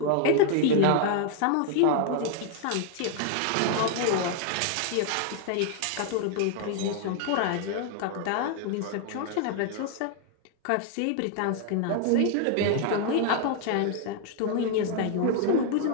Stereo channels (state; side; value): different; both; correlation 0.00